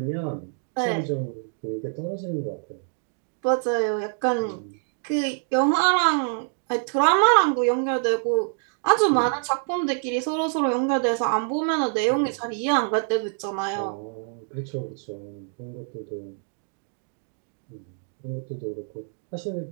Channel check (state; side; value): silent; left; 56 dB below the other